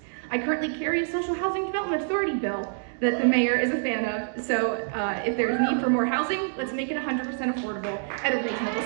I currently carry a social housing development authority bill that the mayor is a fan of, so if there's need for more housing, let's make it 100% affordable at a reasonable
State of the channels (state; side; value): silent; left; digital silence